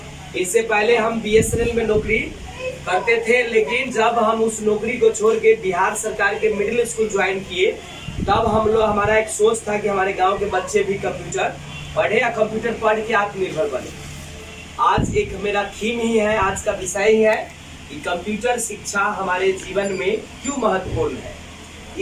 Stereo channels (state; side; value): identical; both; correlation 1.00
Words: इससे पहले हम BSNL में नौकरी करते थे, लेकिन जब हम उस नौकरी को छोड़ के बिहार सरकार के मिडिल स्कूल ज्वाइन किए तब हम लोग हमारा एक सोच था कि हमारे गांव के बच्चे भी कंप्यूटर पढ़े या कंप्यूटर पढ़ के आत्मनिर्भर बने। आज एक मेरा थीम ही है, आज का विषय ही है कि कंप्यूटर शिक्षा हमारे जीवन में क्यों महत्वपूर्ण है।